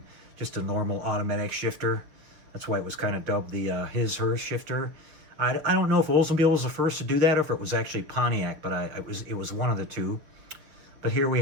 just a normal automatic shifter. That's why it was kind of dubbed the his/hers shifter. I don't know if Oldsmobile was the first to do that or if it was actually Pontiac, but it was one of the two. But here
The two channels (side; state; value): left; late; 6.9 ms